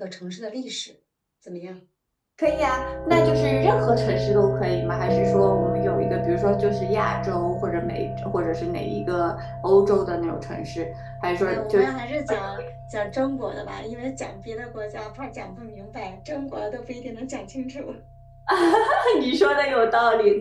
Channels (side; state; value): both; identical; correlation 1.00